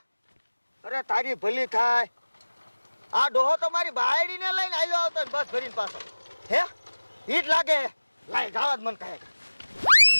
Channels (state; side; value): inverted; both; correlation -1.00